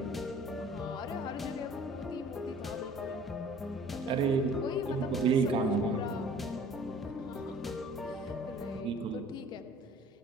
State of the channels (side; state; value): both; normal; correlation 0.50